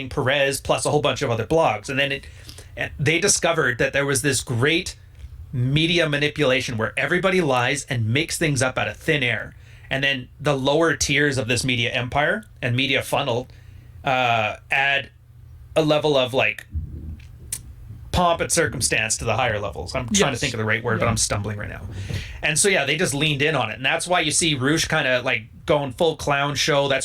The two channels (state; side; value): identical; both; correlation 1.00